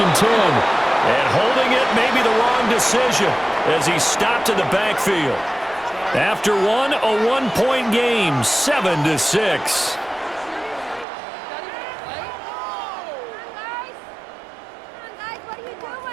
and 10. And holding it may be the wrong decision as he stopped in the backfield. After one, a one-point game, 7-6.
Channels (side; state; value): left; drops out; at 11.1 s